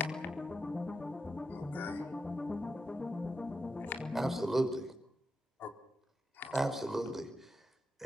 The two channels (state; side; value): normal; both; correlation 0.88